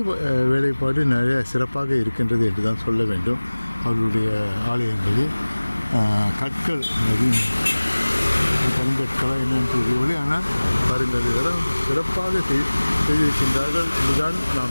வேலைப்பாடு நிறைய சிறப்பாக இருக்கின்றது என்று தான் சொல்ல வேண்டும். அவர்களுடைய ஆலயங்களில் கற்கள் கருங்கற்களா என்னென்னு தெரியவில்லை, ஆனால் பாருங்கள், இதெல்லாம் சிறப்பாக செய்திருக்கின்றார்கள் என்றுதான்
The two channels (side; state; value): both; inverted; correlation -1.00